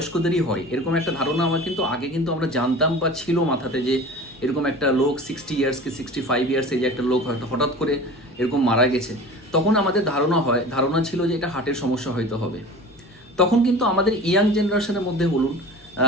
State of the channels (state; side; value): normal; both; correlation 0.38